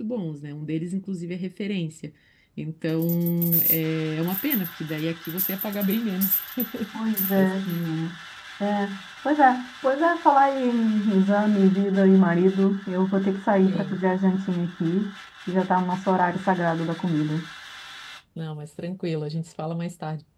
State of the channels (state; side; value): identical; both; correlation 1.00